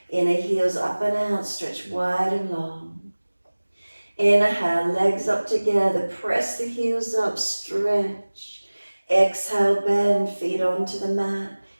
Inner heels up and out, stretch wide and long. Inhale, legs up together, press the heels up, stretch. Exhale, bend, feet onto the mat,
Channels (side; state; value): both; inverted; correlation -1.00